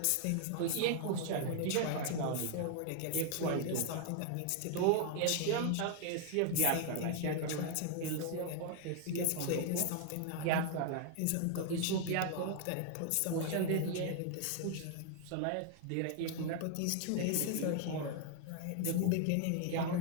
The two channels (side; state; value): both; different; correlation 0.00